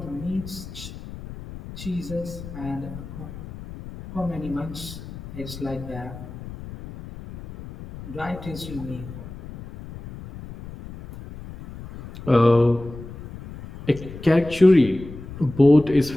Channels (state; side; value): noise; left; rumble, 13 dB below the sound